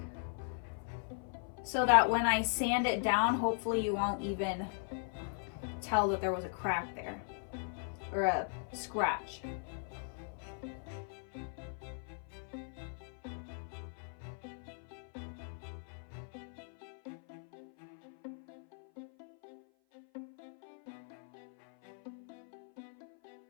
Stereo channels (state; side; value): silent; right; 52 dB below the other